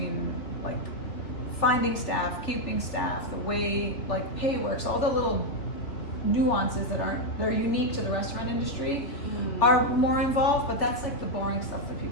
like finding staff, keeping staff, the way like pay works, all the little nuances they're unique to the restaurant industry are more involved, but that's like the boring stuff that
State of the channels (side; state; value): right; late; 3.0 ms